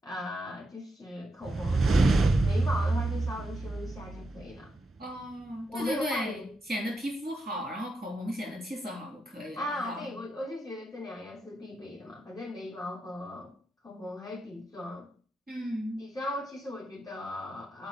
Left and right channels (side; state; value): both; normal; correlation 0.85